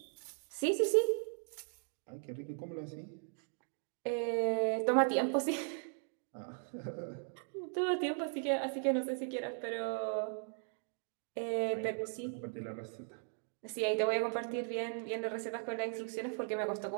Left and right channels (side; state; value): left; silent; 53 dB below the other